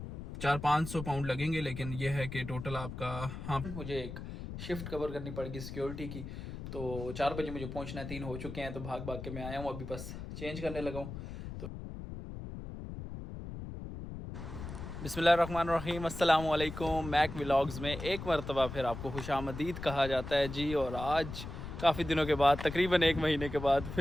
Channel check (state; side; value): noise; left; rumble, 9 dB below the sound